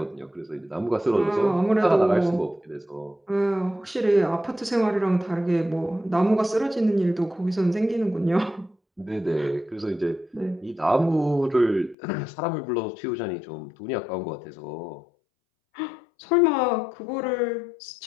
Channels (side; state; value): right; drops out; at 12.0 s